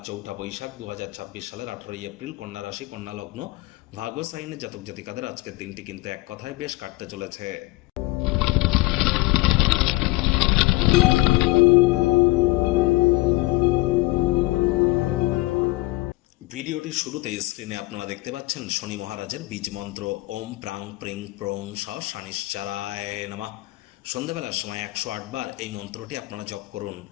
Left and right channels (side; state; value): right; quieter; 21.4 dB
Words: 4 বৈশাখ 2026 সালের 18 এপ্রিল, কন্যা রাশি, কন্যা লগ্ন, ভাগ্য সাইনের জাতক জাতিকাদের আজকের দিনটি কিন্তু এক কথায় বেশ কাটতে চলেছে। ভিডিওটির শুরুতেই স্ক্রিনে আপনারা দেখতে পাচ্ছেন শনি মহারাজের বীজ মন্ত্র ওম প্রাং প্রিং প্রং স শনিশ্চারায় নমঃ। সন্ধ্যাবেলার সময় 108 বার এই মন্ত্রটি আপনারা জপ করুন।